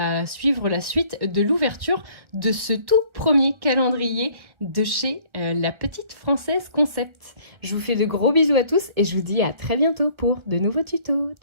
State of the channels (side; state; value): left; late; 1.4 ms